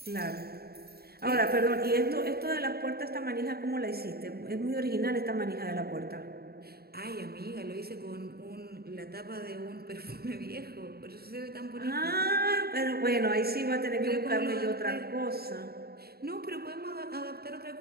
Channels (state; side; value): late; left; 0.45 ms